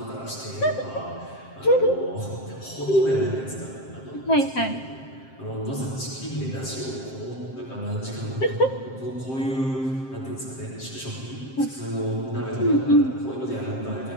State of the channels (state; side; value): late; right; 7.6 ms